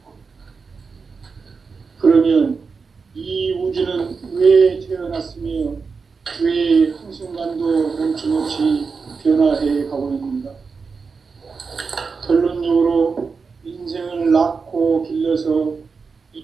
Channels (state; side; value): quieter; left; 5.0 dB